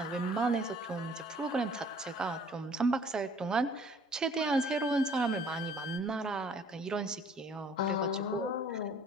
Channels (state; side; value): normal; both; correlation 0.55